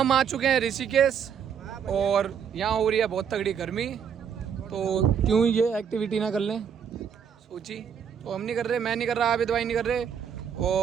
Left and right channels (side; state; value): left; quieter; 7.7 dB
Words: आ चुके हैं ऋषिकेश और यहाँ हो रही है बहुत तगड़ी गर्मी, तो क्यों ये एक्टिविटी ना कर लें सोची। तो हम नहीं कर रहे, मैं नहीं कर रहा, आबिद भाई नहीं कर रहे